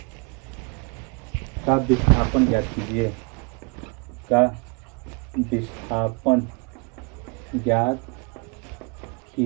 का विस्थापन ज्ञात कीजिए, का विस्थापन ज्ञात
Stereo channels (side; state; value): left; quieter; 31.8 dB